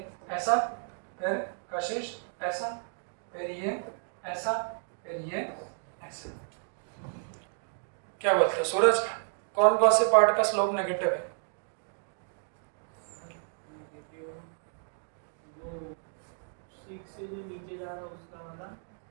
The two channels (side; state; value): left; silent; digital silence